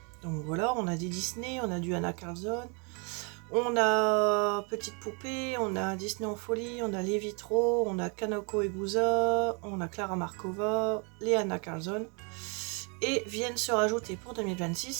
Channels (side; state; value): left; quieter; 34.3 dB